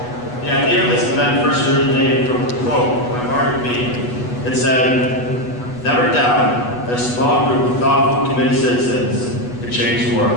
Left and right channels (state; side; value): late; right; 8.2 ms